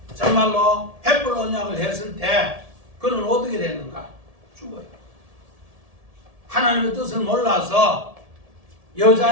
정말로 횃불 언약을 했을 때 그는 어떻게 됐는가? 죽어요. 하나님의 뜻을 몰라서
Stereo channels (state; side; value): late; left; 1.7 ms